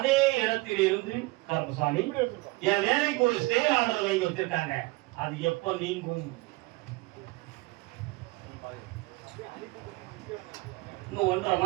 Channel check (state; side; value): quieter; left; 22.6 dB